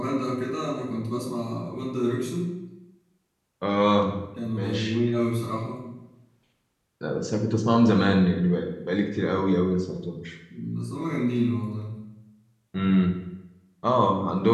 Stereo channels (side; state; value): both; identical; correlation 1.00